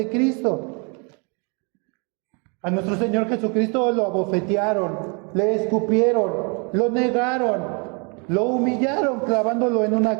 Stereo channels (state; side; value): quieter; left; 33.8 dB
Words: Cristo. A nuestro Señor Jesucristo lo abofetearon, le escupieron, lo negaron, lo humillaron clavándolo en una